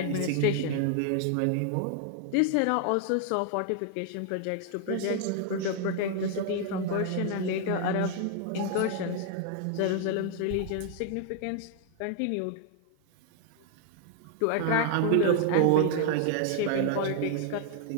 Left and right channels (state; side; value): different; both; correlation 0.00